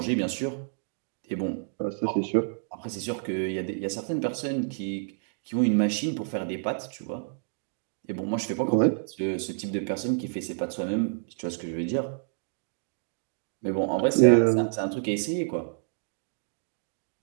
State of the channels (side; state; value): left; silent; digital silence